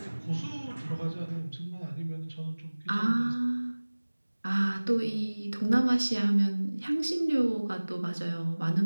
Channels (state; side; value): inverted; both; correlation -1.00